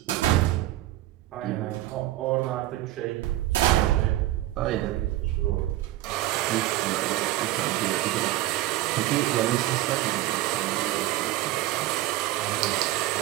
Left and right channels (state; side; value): quieter; left; 15.8 dB